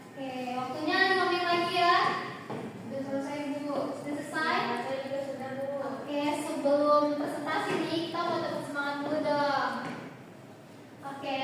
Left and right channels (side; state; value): both; identical; correlation 1.00